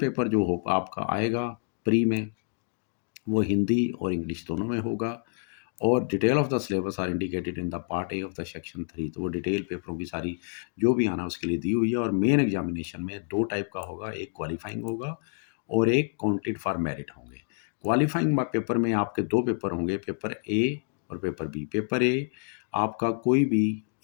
जो हो आपका आएगा pre में, वो हिंदी और इंग्लिश दोनों में होगा। और detail of the syllabus are indicated in the part A of the section 3। तो वो डिटेल पेपरों की सारी जो भी आना उसके लिए दी हुई है। और मेन एग्जामिनेशन में 2 टाइप का होगा, एक क्वालिफाइंग होगा और एक काउंटेड फॉर मेरिट होंगे। क्वालिफाइंग पेपर में आपके 2 पेपर होंगे, पेपर ए और पेपर बी। पेपर ए आपका कोई भी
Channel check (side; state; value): right; silent; 59 dB below the other